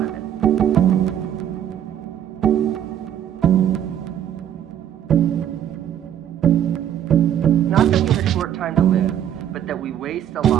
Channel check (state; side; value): quieter; left; 10.2 dB